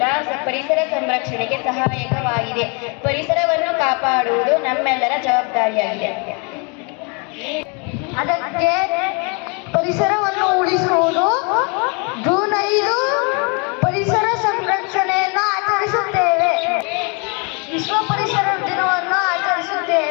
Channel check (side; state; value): right; quieter; 33.6 dB